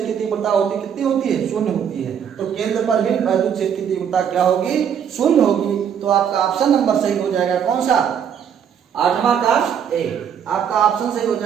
की तीव्रता होती है कितनी होती है, शून्य होती है। तो केंद्र पर भी वैद्युत क्षेत्र की तीव्रता क्या होगी, शून्य होगी। तो आपका ऑप्शन नंबर सही हो जाएगा, कौन सा, 8वां का ए। आपका ऑप्शन सही हो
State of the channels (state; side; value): quieter; left; 8.2 dB